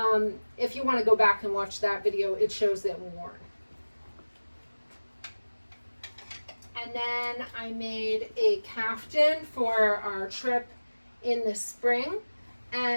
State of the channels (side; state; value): both; inverted; correlation -1.00